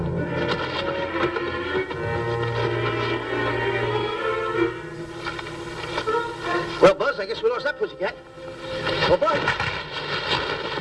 Well, Buzz, I guess we lost that pussycat. Well, Buzz.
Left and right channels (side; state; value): both; identical; correlation 1.00